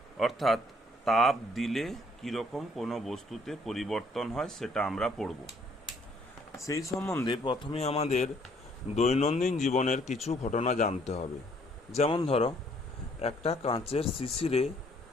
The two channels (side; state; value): both; normal; correlation 0.64